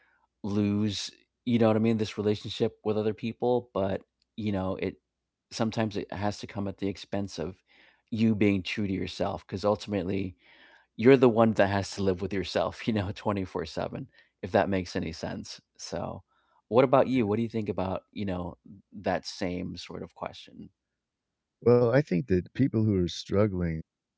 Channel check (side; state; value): both; identical; correlation 1.00